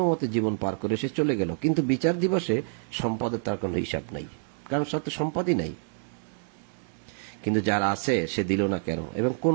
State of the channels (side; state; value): left; silent; 60 dB below the other